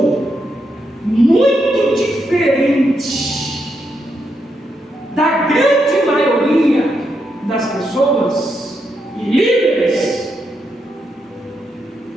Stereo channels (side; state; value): both; normal; correlation 0.82